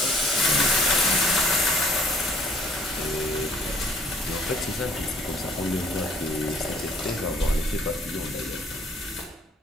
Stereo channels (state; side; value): normal; both; correlation 0.59